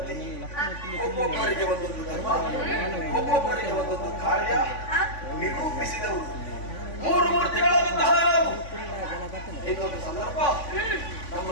ಒಬ್ಬೊಬ್ಬರಿಗೆ ಒಂದೊಂದು ಧರ್ಮ, ಒಬ್ಬೊಬ್ಬರಿಗೆ ಒಂದೊಂದು ಕಾರ್ಯ ನಿರೂಪಿಸಿದವು ಮೂರು ಮೂರ್ತಿಗಳಾದಂತಹ ನಾವು. ಇನ್ನೊಂದು ಸಂದರ್ಭ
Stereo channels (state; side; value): late; right; 3.5 ms